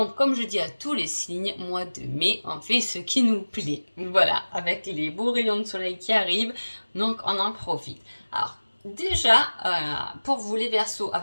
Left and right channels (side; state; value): both; inverted; correlation -1.00